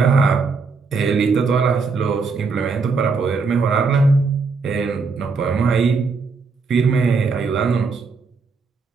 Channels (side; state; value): left; quieter; 4.6 dB